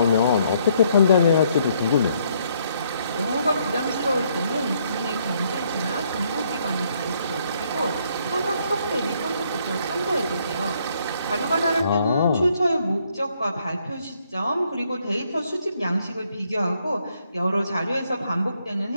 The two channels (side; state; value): both; inverted; correlation -0.70